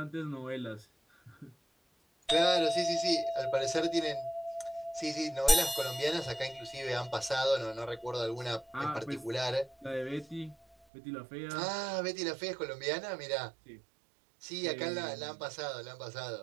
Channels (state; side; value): drops out; left; at 10.8 s